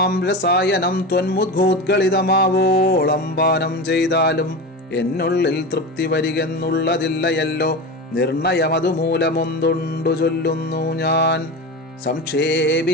രസായനം ത്വന്മുദ്ഘോദ്ഗളിതമാവോളം പാനം ചെയ്താലും എന്നുള്ളിൽ തൃപ്തി വരികെന്നുള്ളതില്ലയല്ലോ. നിർണയമതുമൂലമൊന്തുണ്ടു ചൊല്ലുന്നു ഞാൻ.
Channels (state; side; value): normal; both; correlation 0.25